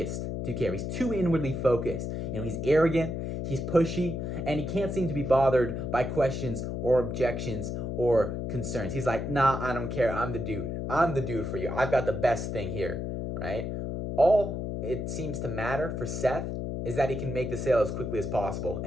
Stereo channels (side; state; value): left; noise; hum, 3 dB below the sound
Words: to care. He's too inwardly focused. You know, he's arrogant. He's pushy, and he can't seem to be bothered by questions or objections or concerns. He's like, nah, I don't care. I'm the dude. I'm the dude for you. I've got the best thing here, right? All it seems to matter for Seth is that he can make the sale as quickly as possible